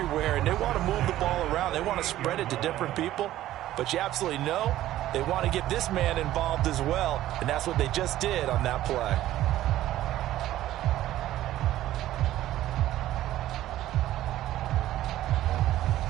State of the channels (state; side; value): quieter; left; 14.0 dB